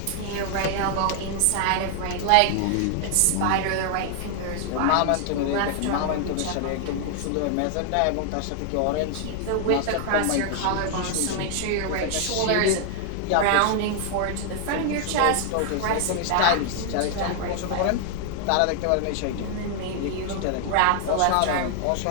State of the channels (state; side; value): different; both; correlation 0.00